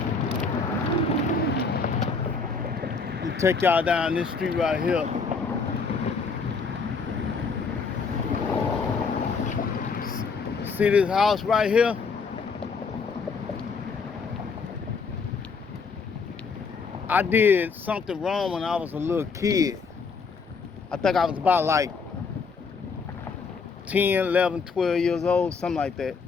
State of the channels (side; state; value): right; quieter; 4.9 dB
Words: I'm gonna take y'all down this street right here. See this house right here? I did something wrong when I was a little kid. I think I was about like 10, 11, 12 years old, something like that.